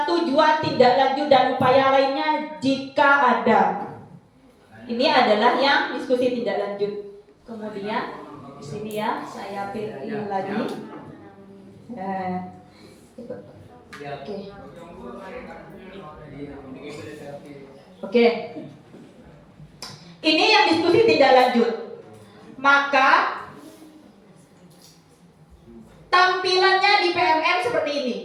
tujuan tindak lanjut dan upaya lainnya jika ada. Ini adalah yang diskusi tindak lanjut. Kemudian di sini ya, saya pilih lagi. Oke. Ini yang diskusi tindak lanjut. Maka tampilannya di PMM seperti ini.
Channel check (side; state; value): both; identical; correlation 1.00